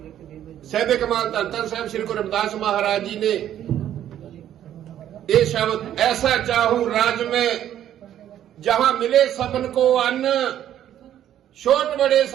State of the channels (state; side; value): quieter; left; 11.1 dB